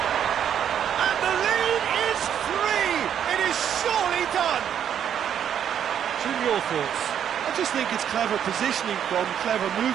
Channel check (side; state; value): left; quieter; 9.1 dB